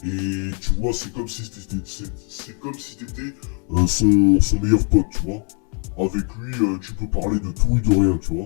et tu vois, c'est comme si t'étais son meilleur pote, tu vois. Avec lui, tu peux parler de tout et de rien, tu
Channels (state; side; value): quieter; right; 36.5 dB